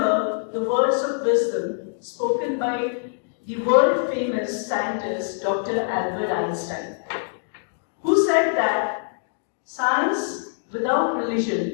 the words of wisdom spoken by the world famous scientist Dr. Albert Einstein, who said that science without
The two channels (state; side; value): silent; right; digital silence